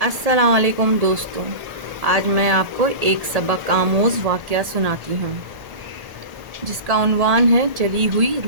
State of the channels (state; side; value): late; left; 1.8 ms